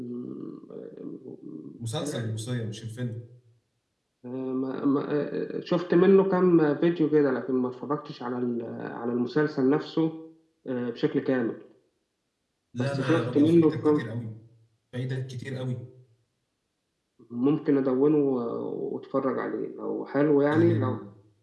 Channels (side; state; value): both; identical; correlation 1.00